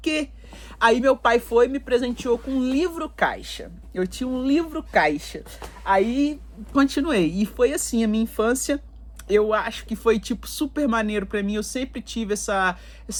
Aí meu pai foi e me presenteou com um livro caixa. Eu tinha um livro caixa. Aí continuei. E foi assim, a minha infância, eu acho que foi super maneiro pra mim. Eu sempre tive essa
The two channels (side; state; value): both; identical; correlation 1.00